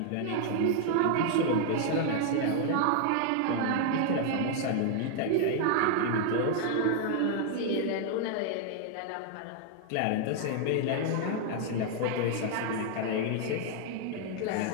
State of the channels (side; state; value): both; different; correlation 0.00